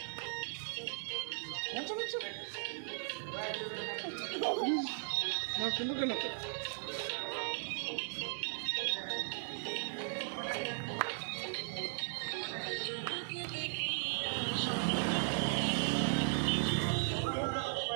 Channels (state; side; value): silent; left; 53 dB below the other